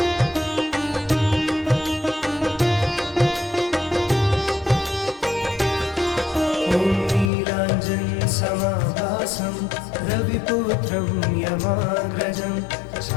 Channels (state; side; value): drops out; right; at 7.3 s